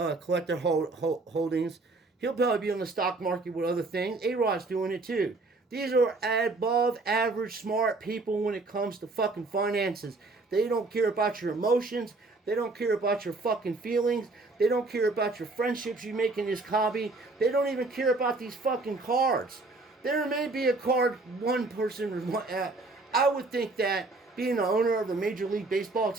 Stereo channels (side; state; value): left; quieter; 3.4 dB